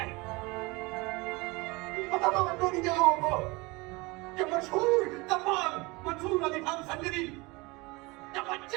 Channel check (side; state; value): left; quieter; 24.6 dB